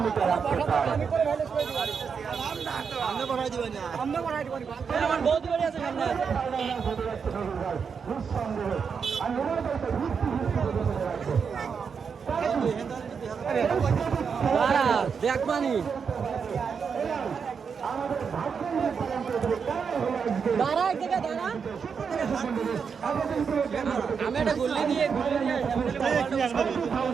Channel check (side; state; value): left; quieter; 6.2 dB